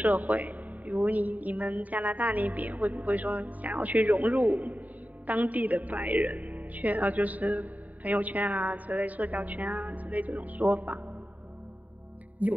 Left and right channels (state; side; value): late; left; 0.074 ms